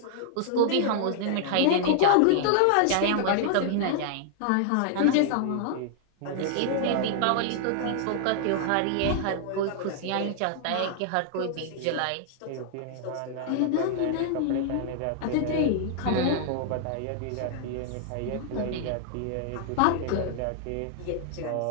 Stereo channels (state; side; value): different; both; correlation -0.01